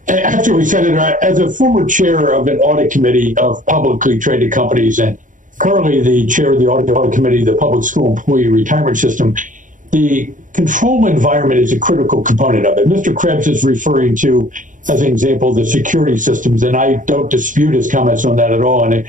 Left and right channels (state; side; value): late; left; 0.38 ms